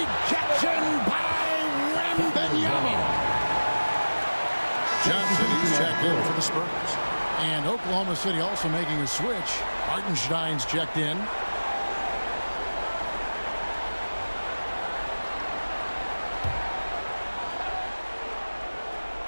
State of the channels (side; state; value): both; inverted; correlation -1.00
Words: by the Spurs. And Oklahoma City also making a switch. Hartenstein's checked in.